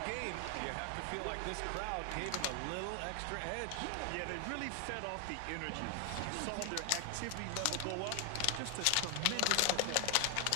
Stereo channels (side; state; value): both; different; correlation 0.00